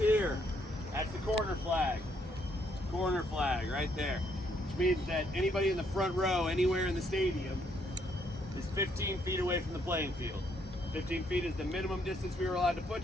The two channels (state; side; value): normal; both; correlation 0.71